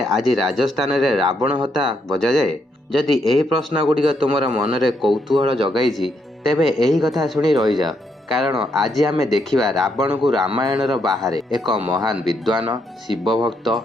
राजस्थान रे रावण हता बजा जाए। जदि एही प्रश्न गुड़िक तुमर मनरे कौतूहल जगाई तेबे एही कथा शुणी रही जाओ, कारण आज आमे देखिबा रावण को रामायणर बाहर एक महान विद्वान शिव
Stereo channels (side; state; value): both; normal; correlation 0.77